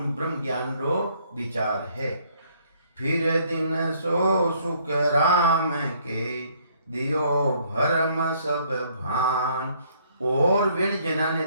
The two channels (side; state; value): both; inverted; correlation -0.64